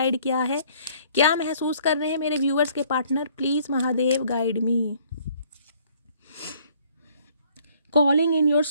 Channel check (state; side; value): inverted; both; correlation -0.60